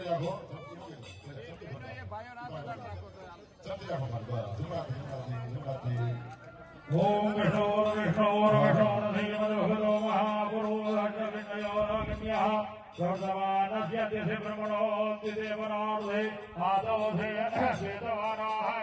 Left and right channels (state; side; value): identical; both; correlation 1.00